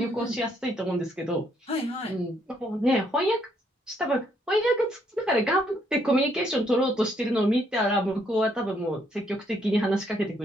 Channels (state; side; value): normal; both; correlation 0.71